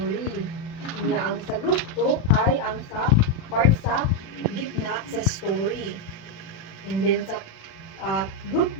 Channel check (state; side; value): late; right; 36 ms